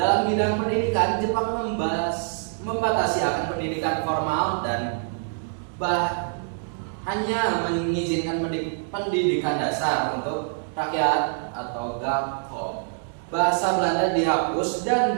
bidang pendidikan, Jepang membatasi akan pendidikan formal dan hanya mengizinkan pendidikan dasar untuk rakyat atau gakko. Bahasa Belanda dihapus dan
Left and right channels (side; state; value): left; silent; digital silence